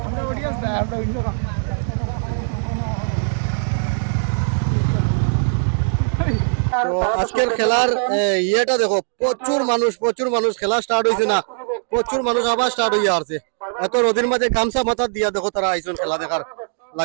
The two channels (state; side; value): silent; left; digital silence